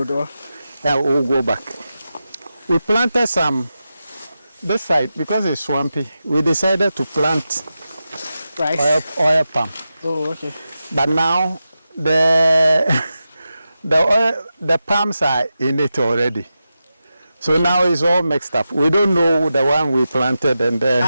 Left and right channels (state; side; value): inverted; both; correlation -0.91